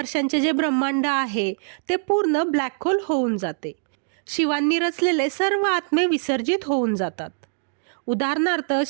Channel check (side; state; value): left; silent; digital silence